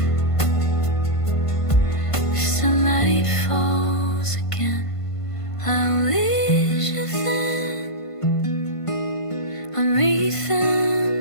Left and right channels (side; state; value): right; late; 1.5 ms